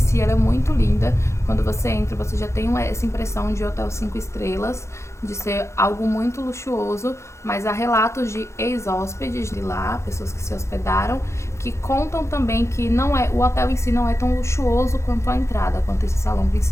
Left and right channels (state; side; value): late; right; 0.14 ms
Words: ela é muito linda. Quando você entra, você já tem essa impressão de hotel 5 estrelas, de ser algo muito luxuoso, mas há relatos de ex-hóspedes de lá, pessoas que se hospedaram, que contam também que o hotel em si não é tão luxuoso quanto a entrada, quanto esse salão